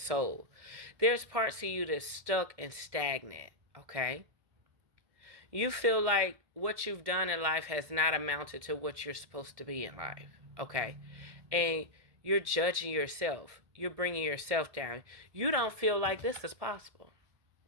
There's parts of you that's stuck and stagnant, okay? You feel like what you've done in life has not amounted to what you're supposed to be in life, okay? And you're judging yourself. You're bringing yourself down. You don't feel like this is possible.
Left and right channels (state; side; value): late; left; 1.7 ms